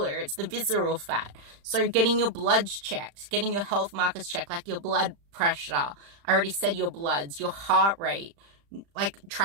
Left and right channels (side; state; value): left; late; 35 ms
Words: It's the visceral fat. So getting your bloods checked, getting your health markers checked, like your blood pressure, I already said your bloods, your heart rate, like